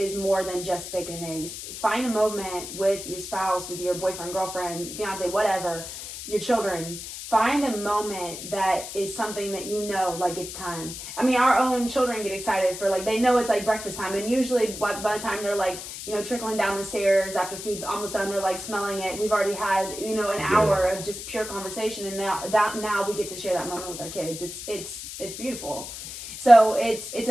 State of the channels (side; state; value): left; noise; hiss, 9 dB below the sound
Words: more than just bacon and eggs. Find a moment with your spouse, with your boyfriend, girlfriend, fiance, whatever, your children. Find a moment that is something that like, it's time. I mean, our own children get excited for, like, they know it's like breakfast time, and usually by the time they're like, trickling down the stairs after food's almost done, they're like smelling it. We've already had, an hour of just pure conversation, and now we get to share that moment with our kids. It's beautiful. So it's